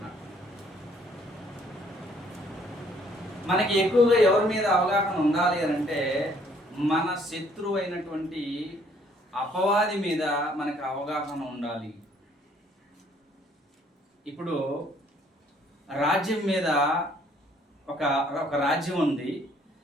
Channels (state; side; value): normal; both; correlation 0.63